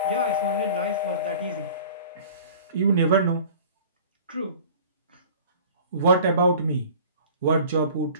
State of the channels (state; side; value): inverted; both; correlation -0.45